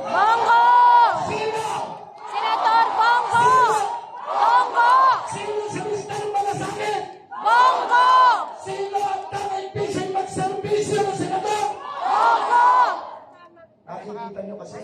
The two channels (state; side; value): identical; both; correlation 1.00